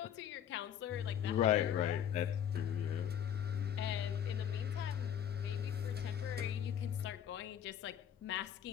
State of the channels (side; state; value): right; quieter; 9.4 dB